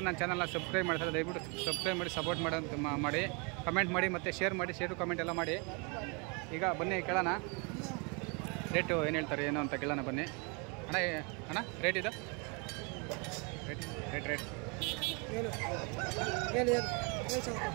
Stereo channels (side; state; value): left; quieter; 32.6 dB